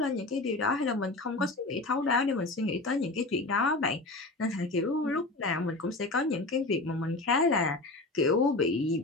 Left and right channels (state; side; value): quieter; right; 3.0 dB